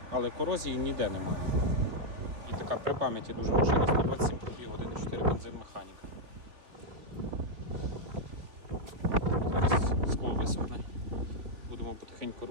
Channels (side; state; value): left; late; 3.5 ms